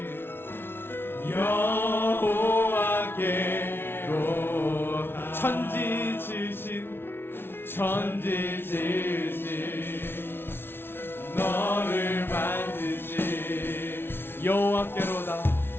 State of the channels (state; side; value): late; right; 0.11 ms